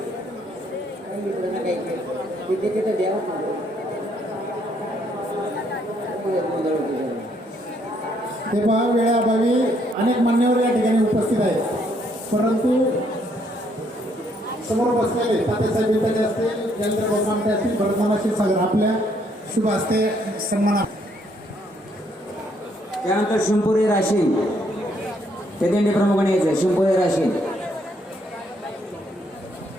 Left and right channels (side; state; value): both; normal; correlation 0.70